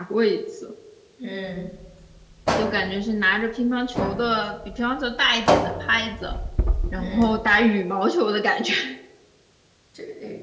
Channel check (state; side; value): identical; both; correlation 1.00